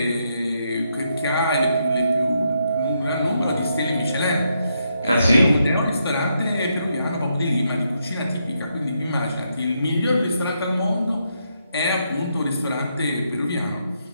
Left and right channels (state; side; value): inverted; both; correlation -0.79